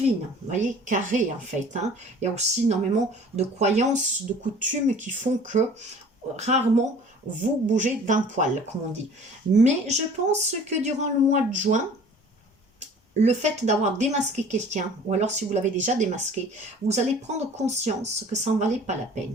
vous voyez, carré en fait. Hein. Il y a aussi énormément de croyances, de coutumes qui font que rarement vous bougez d'un poil, comme on dit. Mais je pense que durant le mois de juin, le fait d'avoir démasqué quelqu'un, ou alors si vous l'avez déjà démasqué, vous allez prendre conscience que ça n'en valait pas la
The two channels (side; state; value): both; normal; correlation 0.47